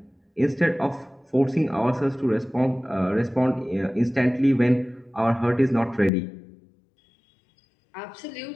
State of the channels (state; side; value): drops out; right; at 6.1 s